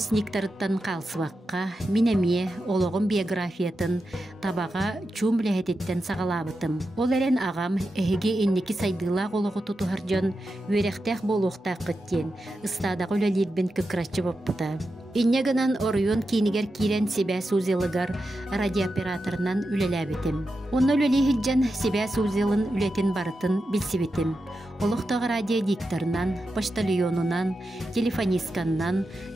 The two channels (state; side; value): normal; both; correlation 0.89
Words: қалсываққа, минәме олығын биографиятын табаға чумләхететтен сағалабытым. Ол әрен ағам әхеге еннекі сайдылақ олығы тұтығар жон өректәқ болуқтақ күттен, ұстадағы өлелербен күкіратчы боппыта. Иннегінан орыйон кейінігер кейрен себе сузелыгар радиооператорынан үлеләбетім. Оны өлелейхіджен себе сузелын үлетін барытын білсебетім. Олықтағы радиодикторынан, поштальонынан, телефонистканнан,